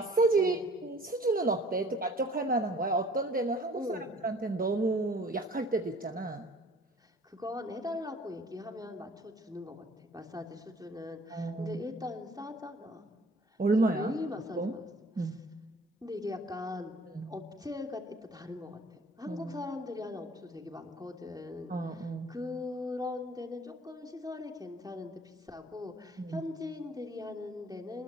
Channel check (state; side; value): normal; both; correlation 0.52